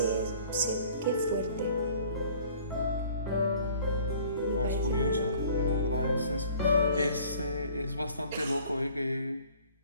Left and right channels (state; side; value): inverted; both; correlation -0.52